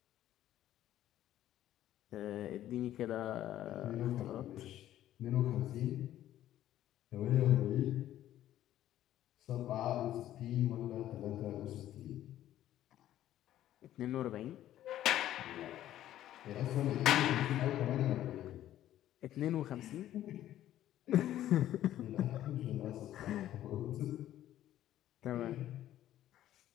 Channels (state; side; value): quieter; right; 12.7 dB